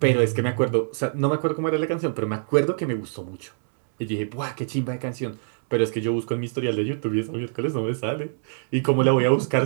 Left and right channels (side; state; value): left; silent; digital silence